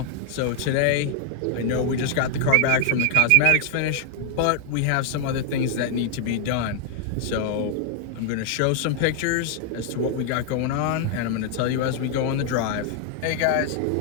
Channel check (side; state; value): both; different; correlation 0.00